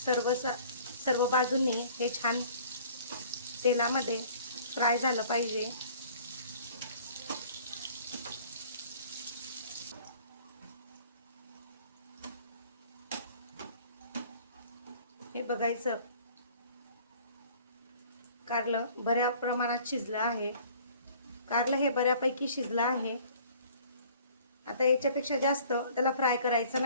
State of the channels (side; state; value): both; inverted; correlation -0.52